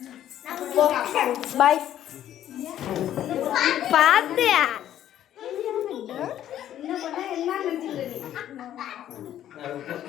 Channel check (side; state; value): right; quieter; 11.5 dB